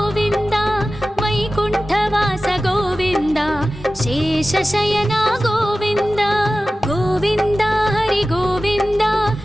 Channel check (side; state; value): both; normal; correlation 0.96